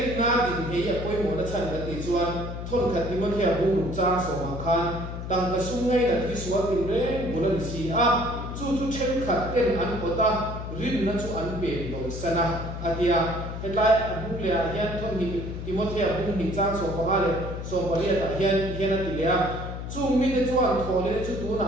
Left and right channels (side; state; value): left; noise; hum, 7 dB below the sound